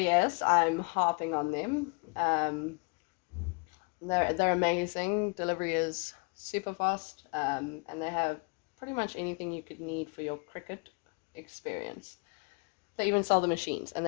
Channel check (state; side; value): quieter; right; 32.3 dB